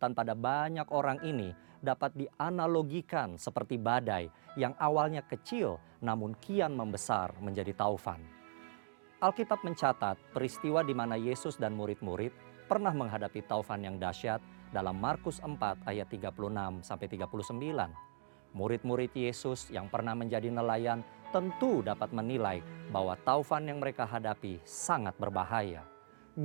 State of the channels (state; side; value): silent; left; digital silence